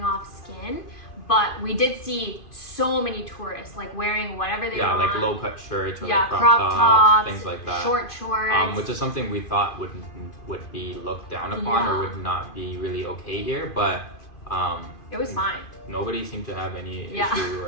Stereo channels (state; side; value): late; right; 2.5 ms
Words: off skin. But we did see so many tourists like wearing whatever they want. Yeah, like low cut shirts or crop tops, things like that. Short shorts. Which is something we thought would be looked down upon or would not be really okay here, but it was fine. Nobody seemed to have any issue